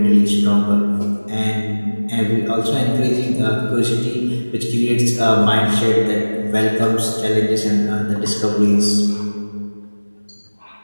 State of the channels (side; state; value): both; inverted; correlation -1.00